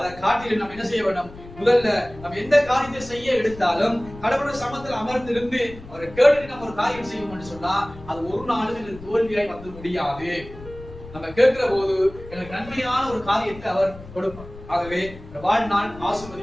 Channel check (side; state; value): left; noise; rumble, 17 dB below the sound